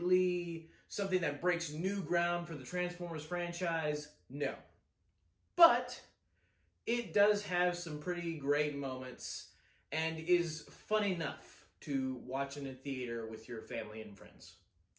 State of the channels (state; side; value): identical; both; correlation 1.00